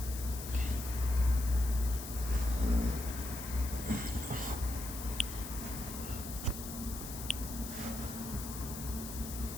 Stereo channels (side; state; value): left; noise; hiss, 9 dB below the sound